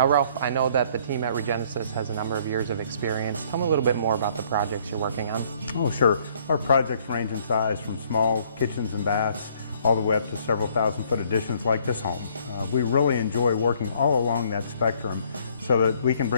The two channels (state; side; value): inverted; both; correlation -0.62